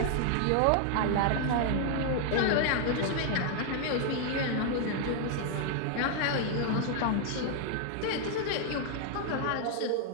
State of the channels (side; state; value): both; different; correlation 0.00